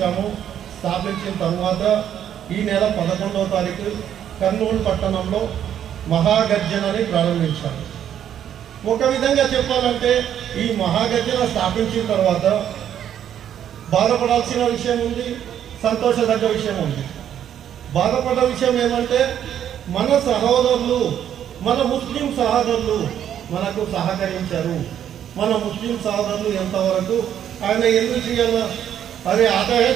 స్థాపించిన తర్వాత ఈ నెల 11వ తారీఖు కర్నూలు పట్టణంలో మహాగర్జనని ప్రారంభించాము. ఒక విధంగా చెప్పాలంటే ఈ మహాగర్జన స్థాపించిన తర్వాత బాధపడాల్సిన విషయం ఉంది, సంతోషదగ్గ విషయం ఉంది. బాధపడ్డ విషయం ఏమంటే మన సహోదరులు, మన ముస్లిం సహోదరులు మనకు సహకరించారు. మన ముస్లిం సోదరులు ఎంతవరకు ఆయన ఎందుకు చేయాలా? अरे आते हैं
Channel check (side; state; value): left; quieter; 9.9 dB